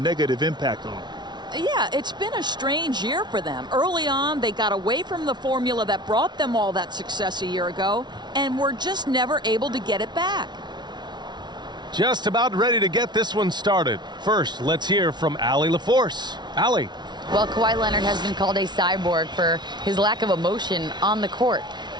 impact on them. Yeah, it's been a strange year for them. Early on, they got away from the formula that brought them all that success a year ago, and were just never able to get it back. Just about ready to get this one started. First, let's hear from Allie LaForce. Allie. Well, Kawhi Leonard has been called a cyborg for his lack of emotion on the court.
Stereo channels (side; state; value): left; late; 0.20 ms